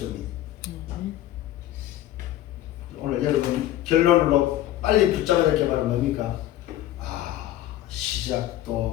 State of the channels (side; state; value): right; quieter; 13.7 dB